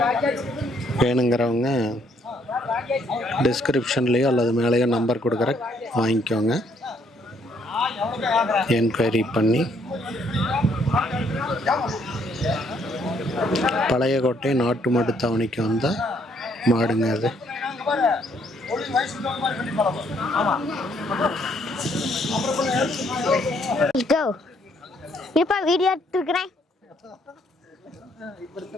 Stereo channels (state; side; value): normal; both; correlation 0.68